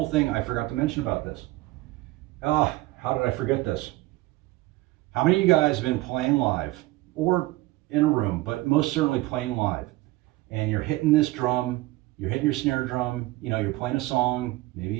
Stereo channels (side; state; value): left; quieter; 19.2 dB